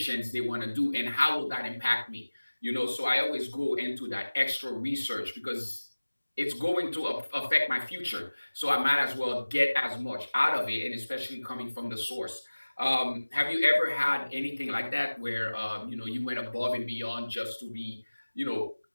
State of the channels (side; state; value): both; inverted; correlation -1.00